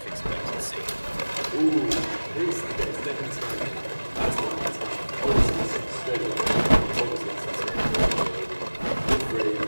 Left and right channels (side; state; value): both; inverted; correlation -1.00